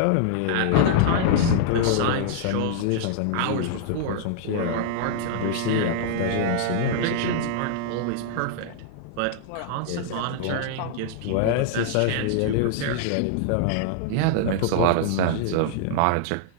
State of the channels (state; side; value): different; both; correlation -0.01